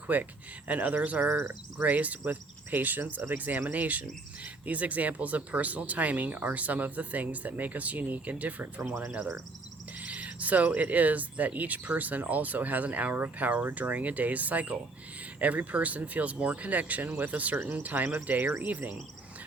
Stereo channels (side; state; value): left; quieter; 3.4 dB